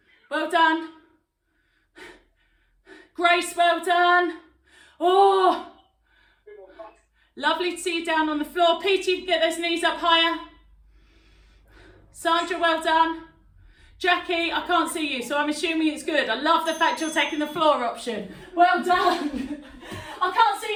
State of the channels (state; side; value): identical; both; correlation 1.00